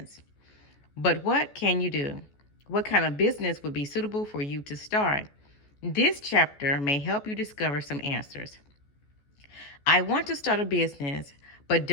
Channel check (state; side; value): late; right; 14 ms